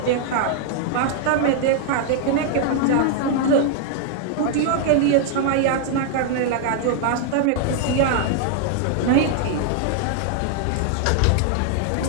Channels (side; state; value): both; different; correlation 0.00